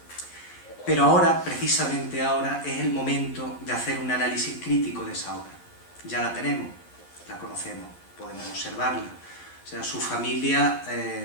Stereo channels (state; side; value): late; right; 11 ms